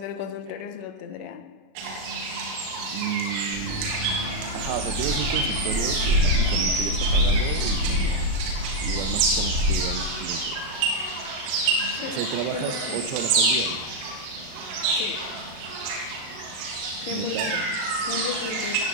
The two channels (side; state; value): left; late; 37 ms